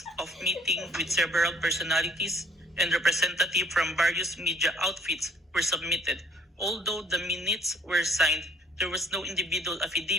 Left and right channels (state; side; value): normal; both; correlation 0.58